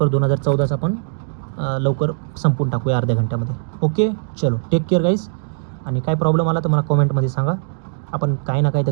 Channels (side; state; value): left; silent; digital silence